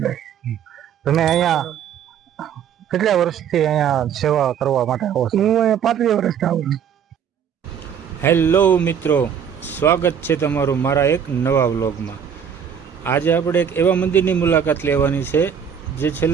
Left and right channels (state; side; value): quieter; left; 8.0 dB